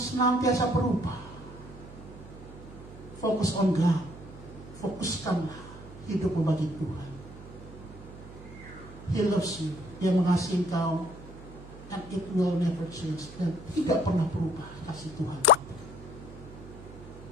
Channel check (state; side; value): noise; right; hum, 16 dB below the sound